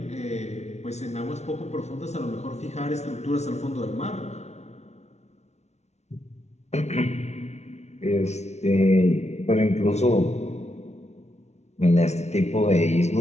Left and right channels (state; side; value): late; right; 0.32 ms